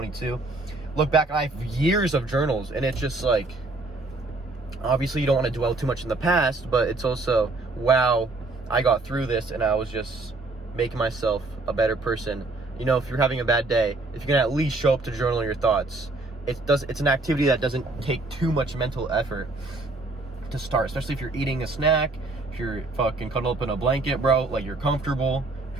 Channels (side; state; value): left; quieter; 3.2 dB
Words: look back, I have years of journals, and it's just like, obviously you don't want to dwell too much in the past, but it's also, wow, I got through this, and I was just making myself a better person. You know, if you're having a bad day, if you can at least show up to journal your thoughts, it's an activity that doesn't take too much mental effort to start, especially if you're eating a snack, if you're fucking cuddled up in a blanket, bro, like you're comfortable,